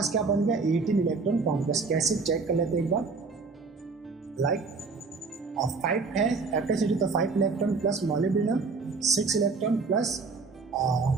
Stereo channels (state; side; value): quieter; left; 4.4 dB